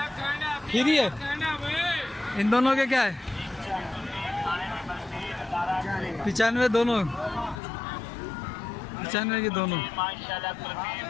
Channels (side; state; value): right; drops out; at 7.6 s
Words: खीरी है। इन दोनों के क्या है? 95 दोनों, 95 की दोनों।